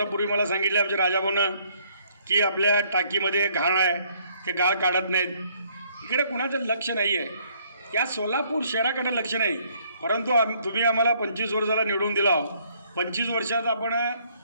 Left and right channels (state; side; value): inverted; both; correlation -0.65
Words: मला सांगितले आमच्या राजाभाऊनं की आपल्या टाकीमध्ये घाण आहे, ते गाळ काढत नाहीत. इकडे कुणाचं लक्ष नाही आहे. या सोलापूर शहराकडे लक्ष नाही. परंतु तुम्ही आम्हाला 25 वर्षाला निवडून दिला. 25 वर्षात आपण